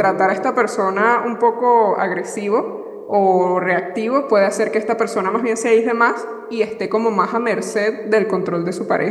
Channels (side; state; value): both; identical; correlation 1.00